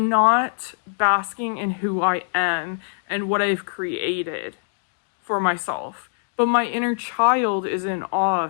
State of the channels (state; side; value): silent; right; digital silence